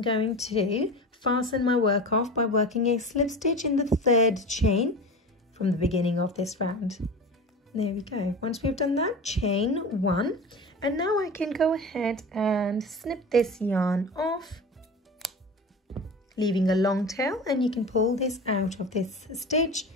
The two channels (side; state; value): both; normal; correlation 0.31